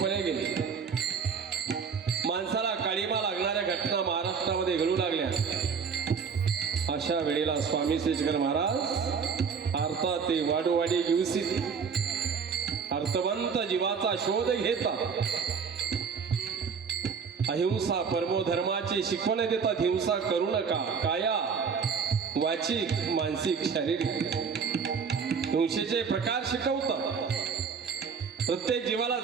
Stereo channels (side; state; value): left; quieter; 6.0 dB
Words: गेले. माणसाला काळीमा लागणाऱ्या घटना महाराष्ट्रामध्ये घडू लागल्या. अशा वेळेला स्वामी श्रीशंकर महाराज अर्थात ते वाडोवाडी घेऊसित अर्थवंत जीवाचा शोध घेतात. अहिंसा परमो धर्माची शिकवण देतात. हिंसा करू नका, काया वाचिक मानसिक शारीरिक. हिंसेचे प्रकार शिकवतात. प्रत्येक जीवाला